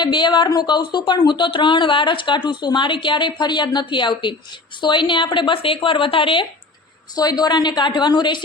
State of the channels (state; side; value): quieter; right; 3.5 dB